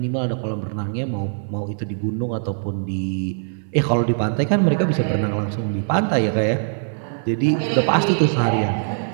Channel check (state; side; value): silent; left; 64 dB below the other